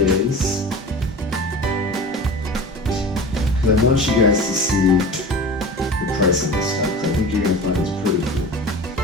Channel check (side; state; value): both; normal; correlation 0.35